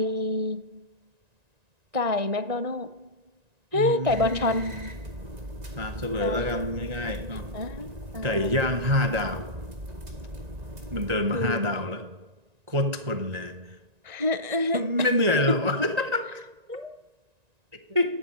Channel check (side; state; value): left; late; 1.9 ms